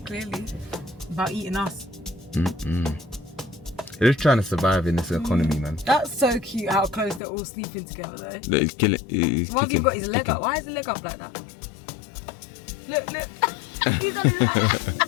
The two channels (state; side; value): drops out; right; at 7.2 s